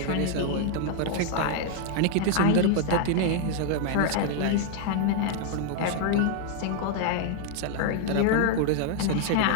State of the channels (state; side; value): different; both; correlation 0.00